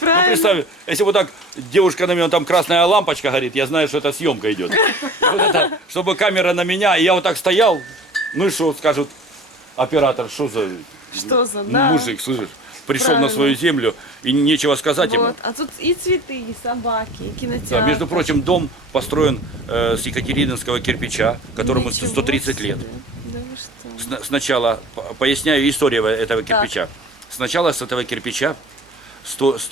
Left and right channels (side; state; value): both; normal; correlation 0.42